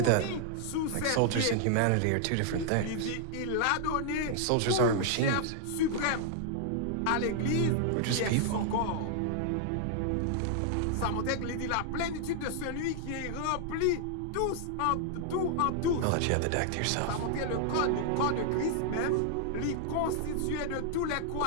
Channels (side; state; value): both; different; correlation -0.01